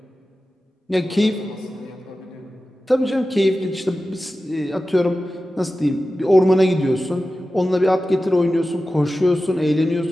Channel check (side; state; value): both; normal; correlation 0.94